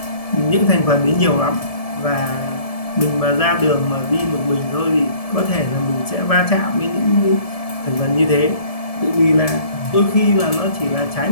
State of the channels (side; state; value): right; late; 1.7 ms